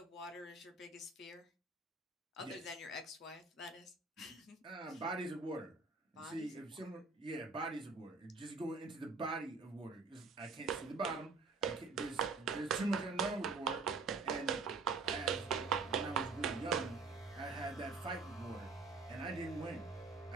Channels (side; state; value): left; quieter; 4.1 dB